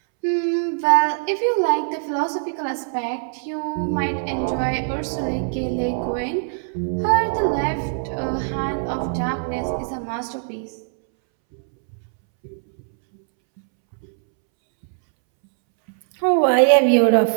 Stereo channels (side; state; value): left; silent; 64 dB below the other